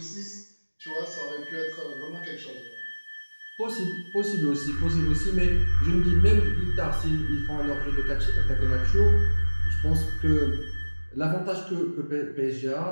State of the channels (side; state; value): both; inverted; correlation -1.00